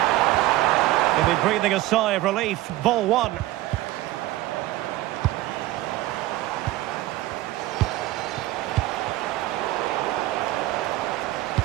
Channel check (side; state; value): left; quieter; 16.8 dB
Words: He'll be breathing a sigh of relief. Ball one.